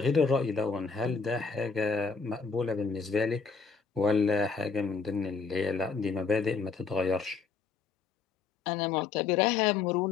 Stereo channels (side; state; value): right; quieter; 5.1 dB